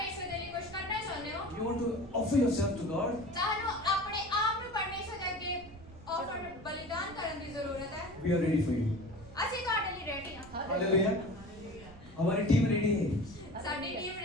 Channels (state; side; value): noise; right; rumble, 19 dB below the sound